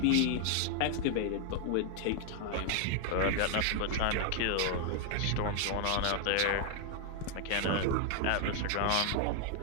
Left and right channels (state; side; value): different; both; correlation 0.00